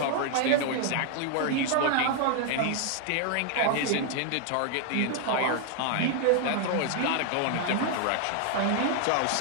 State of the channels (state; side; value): different; both; correlation 0.00